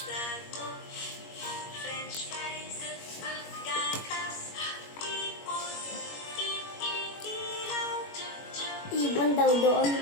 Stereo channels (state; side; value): late; right; 21 ms